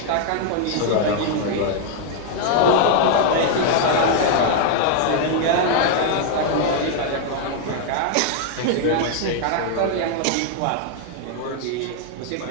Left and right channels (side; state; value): both; different; correlation 0.00